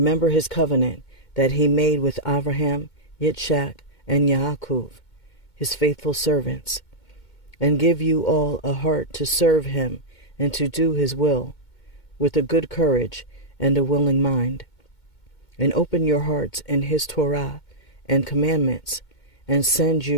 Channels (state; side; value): late; right; 2.2 ms